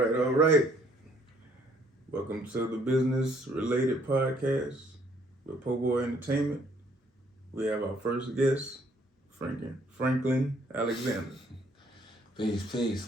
Welcome to the business related podcast with Poeboi Entertainment. We have our first guest, Franklin Alexander. Peace, peace.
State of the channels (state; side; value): normal; both; correlation 0.64